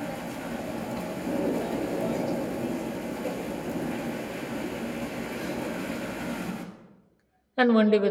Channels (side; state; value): both; identical; correlation 1.00